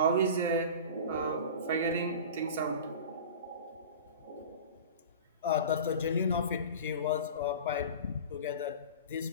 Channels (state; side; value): inverted; both; correlation -0.35